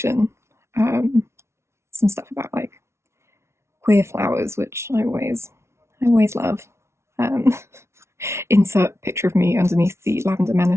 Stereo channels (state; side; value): late; left; 0.13 ms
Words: some stuff about like queer flowers, which I always love. Insert picture of me underneath the Lavender